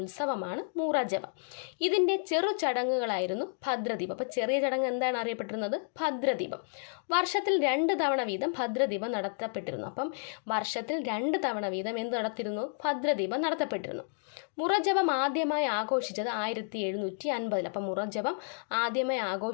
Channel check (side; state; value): right; silent; digital silence